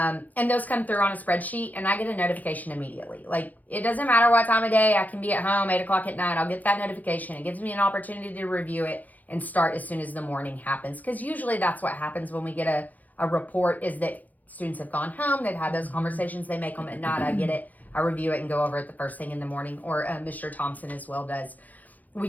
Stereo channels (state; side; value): late; right; 0.080 ms